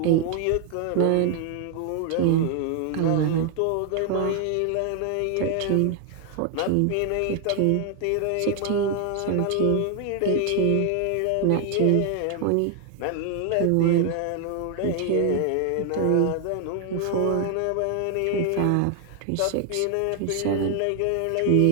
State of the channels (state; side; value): different; both; correlation 0.00